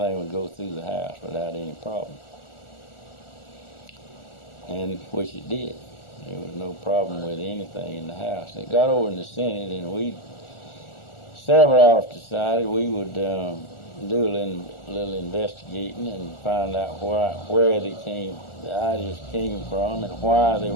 would go through the House without any problem, and which it did. There was no problem with anything in the House. It got over in the Senate, and several of us decided we would do a little investigating and find out where the ideas came from and why they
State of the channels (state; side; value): late; right; 1.4 ms